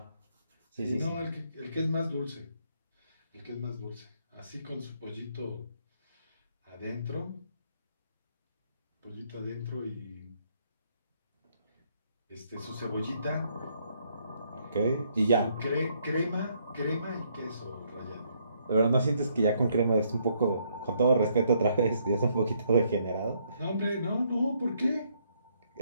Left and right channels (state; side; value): inverted; both; correlation -0.70